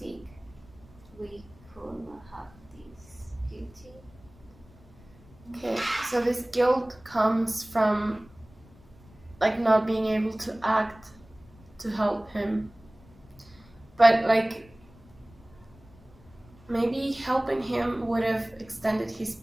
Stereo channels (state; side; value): noise; left; rumble, 25 dB below the sound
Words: we could not have this guilty. Okay, so this guilt comes from like not being able to act to help him. But like maybe helping him would have extended his